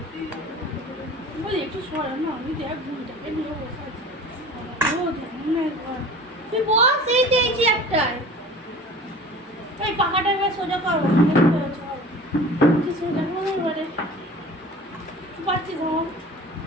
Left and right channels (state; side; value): normal; both; correlation 0.42